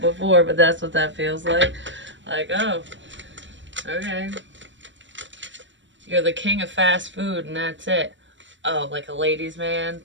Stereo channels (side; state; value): left; late; 0.54 ms